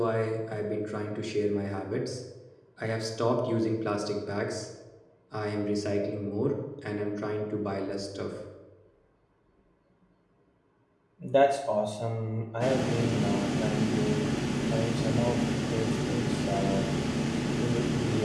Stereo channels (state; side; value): identical; both; correlation 1.00